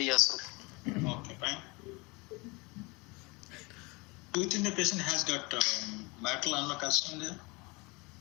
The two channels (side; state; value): right; quieter; 26.6 dB